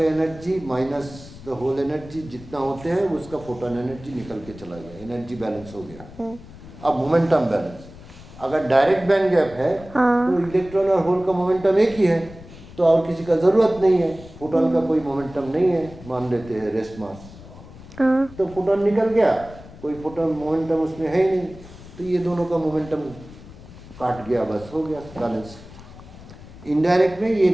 energy minus the hole energy जितना होते हैं उसका फोटोन एनर्जी निकल के चला गया, एनर्जी बैलेंस हो गया। अब मोमेंटम बैलेंस, अगर डायरेक्ट बैंड गैप है तो इलेक्ट्रॉन और होल का मोमेंटम एक ही है, तो और किसी का जरूरत नहीं है। फोटोन का कोई मोमेंटम नहीं है, मान लेते हैं रेस्ट मास, तो फोटोन निकल गया, कोई फोटोन मोमेंटम उसमें है ही नहीं, तो ये दोनों का मोमेंटम काट गया, बस हो गया बैलेंस। इनडायरेक्ट में ये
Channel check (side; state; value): left; noise; rumble, 18 dB below the sound